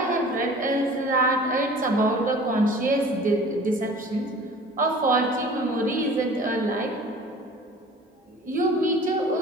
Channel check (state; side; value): normal; both; correlation 0.45